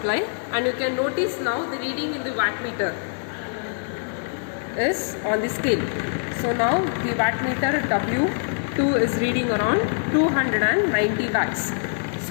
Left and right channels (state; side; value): silent; right; 63 dB below the other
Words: and you can notice now the reading in the wattmeter is on the scale. So now the wattmeter W2 is reading around 290 watts.